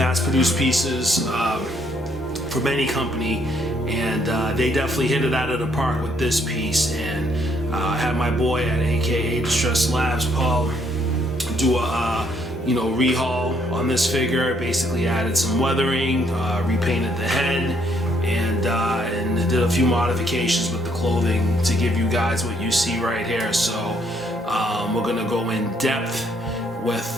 pieces from any company, and they definitely hit it out of the park with this piece. And I had my boy at aka Distress Labs, Paul, do a rehaul on this figure. Basically added some weathering, repainted the head, and did a few modifications with the clothing to give you guys what you see right here. So we're gonna go in depth with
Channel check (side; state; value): both; normal; correlation 0.69